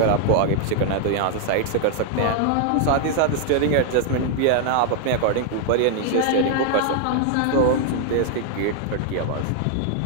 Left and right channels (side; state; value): both; different; correlation 0.00